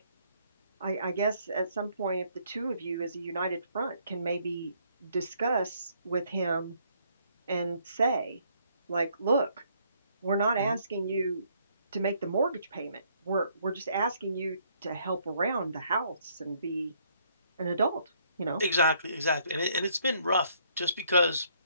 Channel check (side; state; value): both; inverted; correlation -0.68